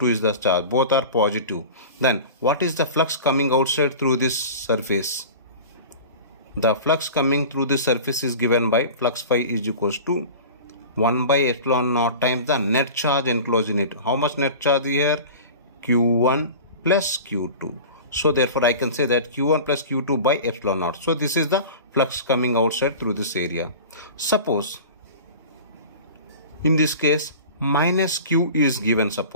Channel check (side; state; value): both; inverted; correlation -0.36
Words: is the charge, both are positive. Then what is the flux coming outside through this surface? The flux coming through this surface is given by flux phi is equals to 1 by epsilon naught times the net charge enclosed in it. How much net charge here? Q1 plus Q2. So therefore I can say that Q1 plus Q2 by epsilon naught. So this is the flux coming outside through this area. Suppose in this case minus Q is given,